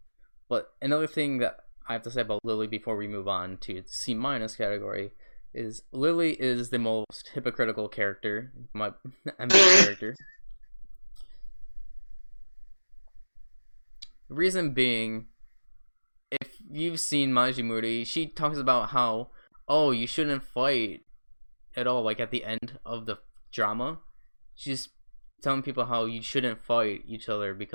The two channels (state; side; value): inverted; both; correlation -1.00